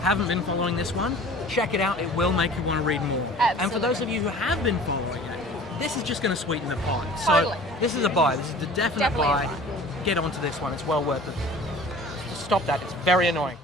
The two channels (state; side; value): normal; both; correlation 0.45